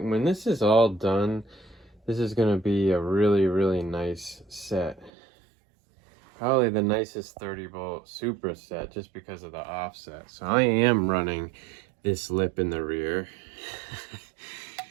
this is all done, this is gonna be a really, really nice set. probably the nicest 30-volt Supra set just because of the offset. So I am running this lip in the rear.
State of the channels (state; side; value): drops out; left; at 5.1 s